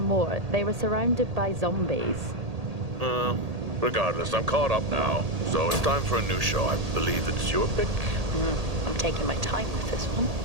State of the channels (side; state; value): left; late; 1.8 ms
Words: more? They were surrounded by zombies. Regardless, I'm caught up now. So it's time for a new show. I believe it's your pick. I'm taking my time with this one.